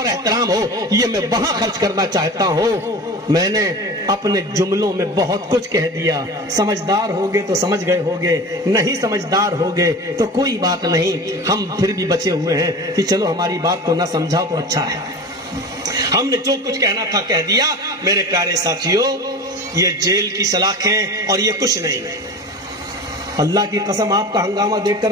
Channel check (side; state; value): both; normal; correlation 0.33